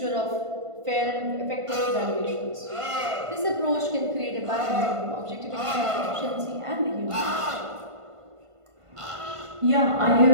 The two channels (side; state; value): left; late; 1.5 ms